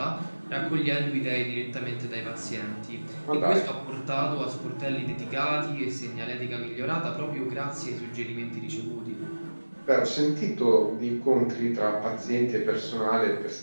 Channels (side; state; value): both; inverted; correlation -1.00